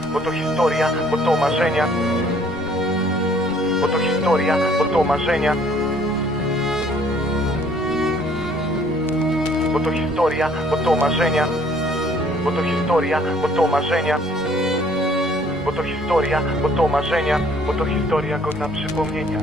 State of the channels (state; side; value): normal; both; correlation 0.59